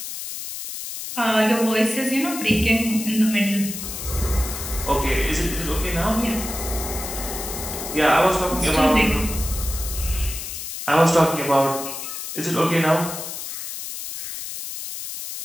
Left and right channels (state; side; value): noise; left; hiss, 7 dB below the sound